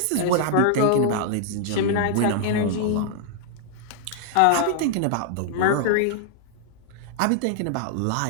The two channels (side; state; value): both; different; correlation -0.01